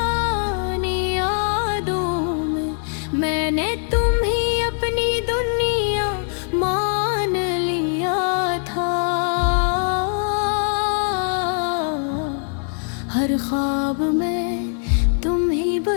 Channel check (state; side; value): silent; right; digital silence